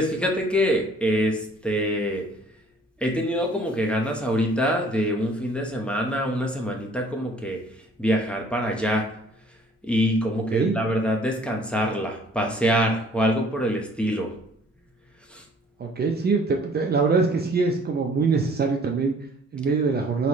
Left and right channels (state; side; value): normal; both; correlation 0.56